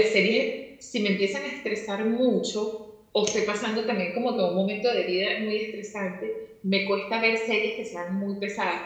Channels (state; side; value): identical; both; correlation 1.00